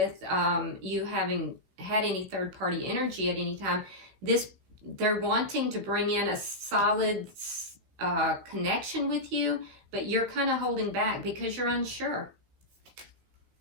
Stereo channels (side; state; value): left; late; 16 ms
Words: you having had any third-party energy at any time. They're wanting to bring in a solid connection with you, but you're kind of holding back because you're unsure.